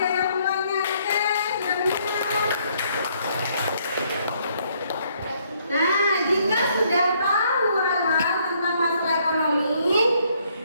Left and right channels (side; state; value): both; inverted; correlation -0.68